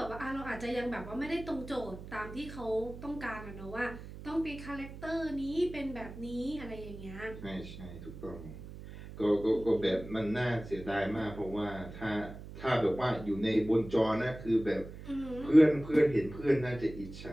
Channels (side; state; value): right; noise; hum, 13 dB below the sound